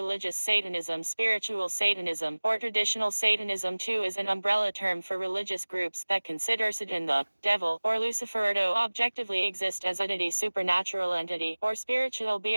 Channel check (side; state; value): both; inverted; correlation -1.00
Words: Satanism, spiritual Satanism, or traditional Satanism too, is an umbrella term for religious groups that consider Satan, the devil, or Lucifer to objectively exist as an supernatural entity, or spiritual